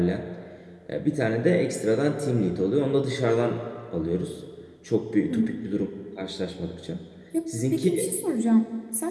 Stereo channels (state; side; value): identical; both; correlation 1.00